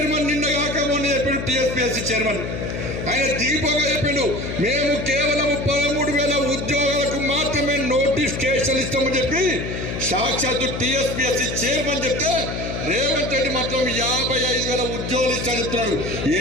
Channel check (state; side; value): noise; left; hum, 5 dB below the sound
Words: నిన్న కాక మొన్న చెప్పిండు. టీఎస్పీఎస్సీ చైర్మన్ ఆయన దీపంగా చెప్పిండు, మేము కేవలం 13,000 ఉద్యోగాలకు మాత్రమే నోటిఫికేషన్ ఇస్తామని చెప్పి సాక్షాత్తు టీఎస్పీఎస్సీ చైర్మన్ చెప్తే రేవంత్ రెడ్డి మాత్రం 55,000 ఉద్యోగాలు ఇస్తామని చెప్తున్నాడు. ఏ